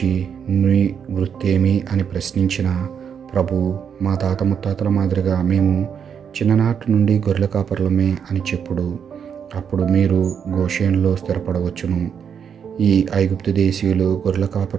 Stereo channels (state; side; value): quieter; left; 7.5 dB